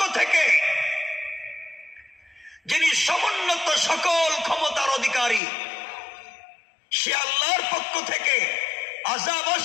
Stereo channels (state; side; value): drops out; right; at 5.4 s